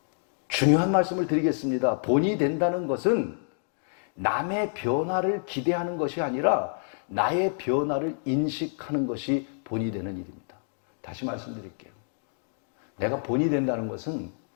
중요한 말씀을 드리겠습니다. 본이 된다는 것은 남의 변화를 기대하는 것이 아니라 나의 변화를 인식하는 것이 본이 되는 일입니다. 다시 말씀드릴게요. 내가 본이 된다는 것은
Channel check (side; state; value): right; silent; digital silence